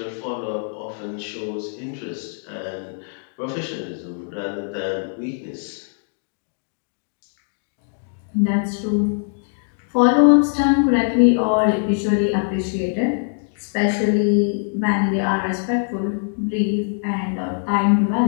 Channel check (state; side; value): silent; right; digital silence